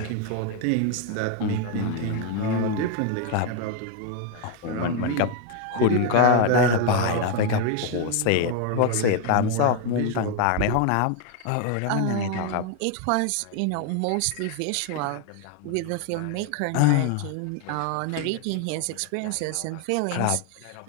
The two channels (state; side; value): different; both; correlation 0.01